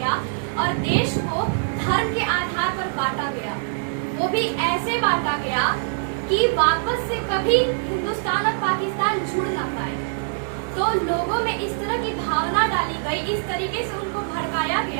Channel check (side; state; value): left; silent; digital silence